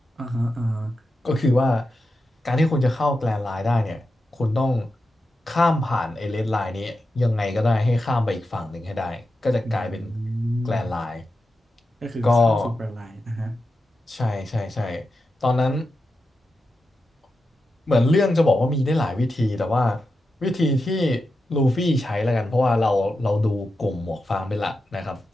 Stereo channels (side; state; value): both; normal; correlation 0.89